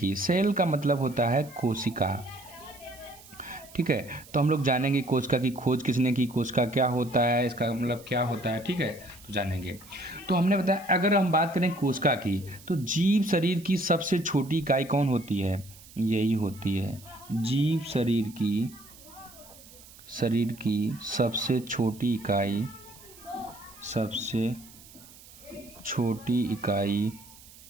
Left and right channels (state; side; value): noise; right; hiss, 21 dB below the sound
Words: सेल का मतलब होता है कोशिका। ठीक है, तो हम लोग जानेंगे कोशिका की खोज किसने की, कोशिका क्या होता है, इसका मतलब क्या होता है। ठीक है, तो जानेंगे। तो हमने बताया, अगर हम बात करें कोशिका की, तो जीव शरीर की सबसे छोटी इकाई कौन होती है? यही होती है जीव शरीर की सबसे छोटी इकाई